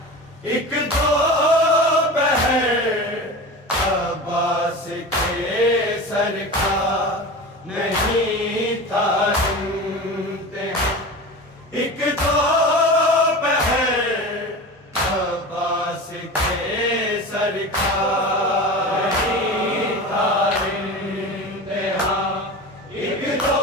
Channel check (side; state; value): both; normal; correlation 0.31